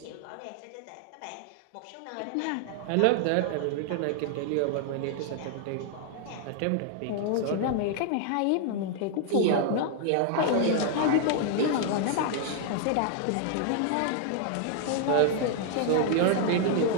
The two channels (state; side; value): different; both; correlation 0.00